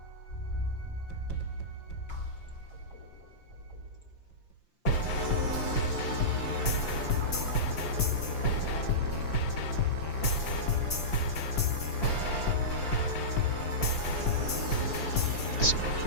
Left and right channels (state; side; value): late; right; 5.8 ms